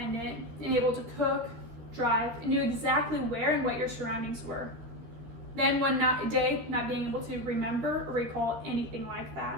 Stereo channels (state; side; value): late; left; 13 ms